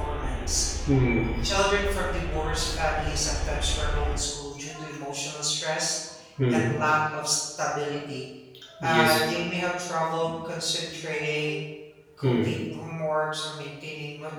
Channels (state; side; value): identical; both; correlation 1.00